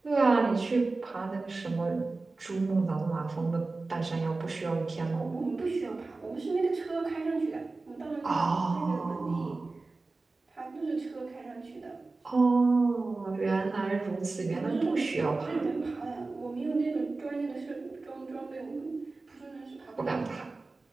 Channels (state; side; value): quieter; left; 3.5 dB